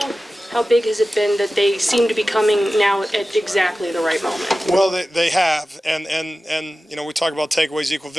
big has it been that they seem to be coming now at exactly the right moment? Well, they have, and we talk about takeaways equal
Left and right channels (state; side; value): normal; both; correlation 0.95